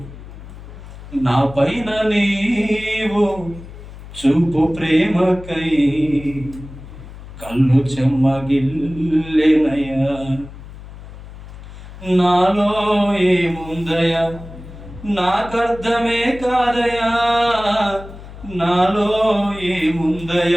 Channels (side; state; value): left; noise; hum, 15 dB below the sound